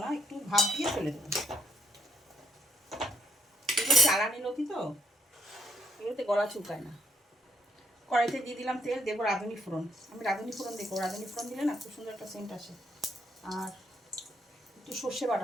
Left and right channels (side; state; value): both; normal; correlation 0.72